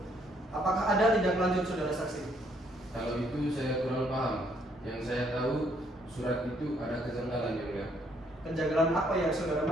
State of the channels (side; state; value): both; normal; correlation 0.68